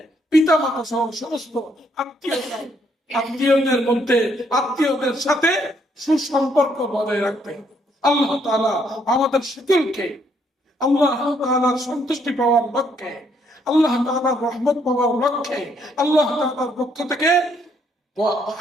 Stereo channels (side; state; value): both; normal; correlation 0.70